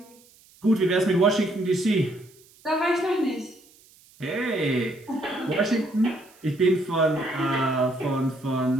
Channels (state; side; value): noise; right; hiss, 28 dB below the sound